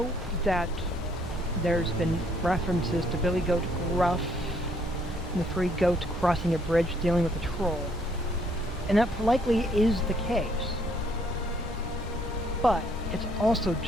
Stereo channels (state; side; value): normal; both; correlation 0.67